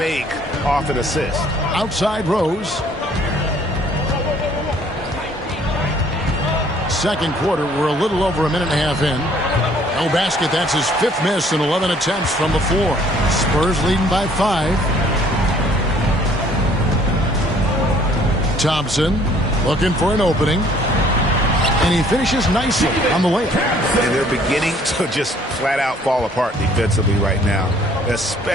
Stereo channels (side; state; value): both; normal; correlation 0.59